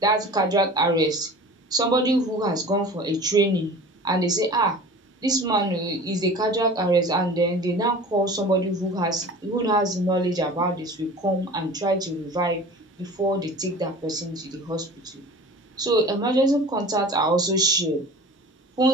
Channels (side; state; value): both; normal; correlation 0.40